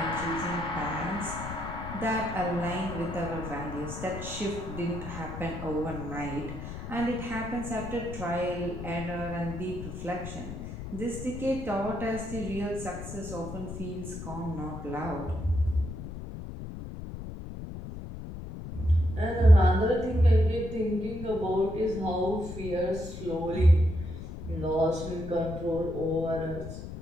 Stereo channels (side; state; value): left; noise; rumble, 9 dB below the sound